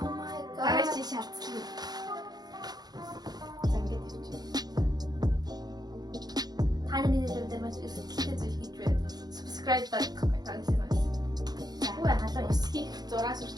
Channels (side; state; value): left; late; 0.19 ms